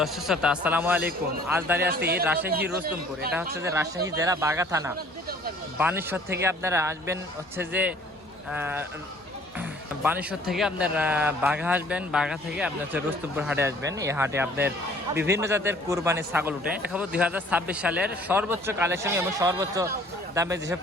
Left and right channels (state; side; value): normal; both; correlation 0.55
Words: শ্রোতা, আসসালামু আলাইকুম। আজ দাঁড়িয়ে আছি রাজশাহী রুস্তমপুর। এটা হচ্ছে যে রাজশাহী জেলা বাঘা থানা। বানেশ্বর থেকে আপনারা আসবেন হচ্ছে যে বানেশ্বর থেকে আপনার বাঘা আসবেন, বাঘা থেকে আপনার হচ্ছে রুস্তমপুর হাটে আসবেন। এই হাটে আপনার বিভিন্ন জাতের কুরবানির ছাগল উঠে দেখাবো। 2026 সালের সর্বোচ্চ কালেকশন এবং সর্বোচ্চ দামে যেসব